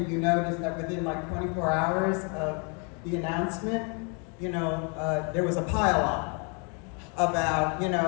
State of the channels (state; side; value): quieter; right; 35.8 dB